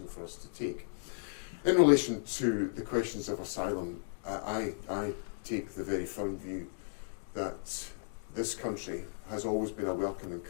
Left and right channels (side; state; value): right; silent; digital silence